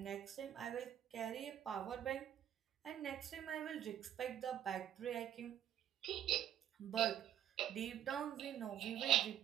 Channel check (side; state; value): left; quieter; 10.6 dB